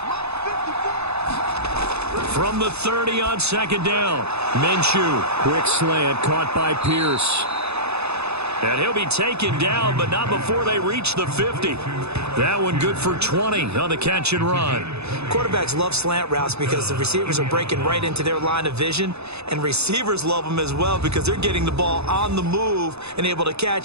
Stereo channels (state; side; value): late; left; 0.79 ms